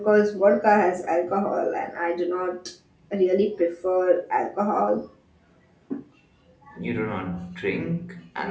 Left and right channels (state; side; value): identical; both; correlation 1.00